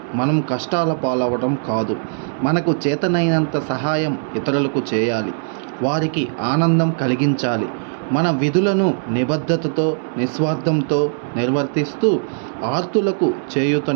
మనం కష్టాల పాలవడం కాదు. మనకు చేతనైనంత సహాయం ఇతరులకు చేయాలి. వారికి ఆనందం కలిగించాలి. మన విధులను నిబద్ధతతో, నిస్వార్థంతో నిర్వర్తిస్తూ ఆర్తులకు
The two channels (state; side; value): silent; left; digital silence